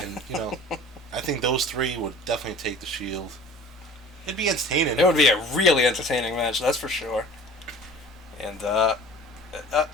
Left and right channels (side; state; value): both; normal; correlation 0.44